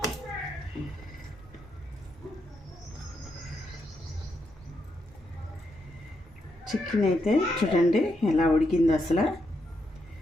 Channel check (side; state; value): both; normal; correlation 0.81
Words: చికెన్ అయితే చూడండి ఎలా ఉడికింది, అసలు